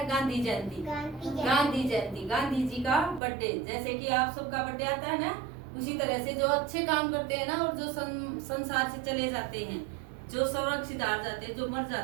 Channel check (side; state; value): left; drops out; at 3.2 s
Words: गांधी जयंती। गांधी जयंती, गांधी जी का बर्थडे। जैसे कि आप सबका बर्थडे आता है ना, उसी तरह से जो अच्छे काम करते हैं ना और जो संसार से चले जाते हैं, जो सुरक्षित हार जाते हैं, जो मर